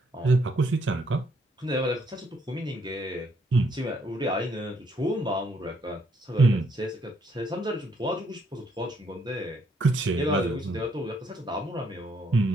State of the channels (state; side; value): normal; both; correlation 0.71